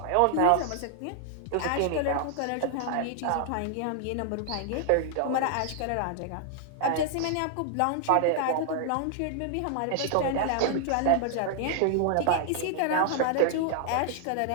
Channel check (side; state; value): both; different; correlation 0.00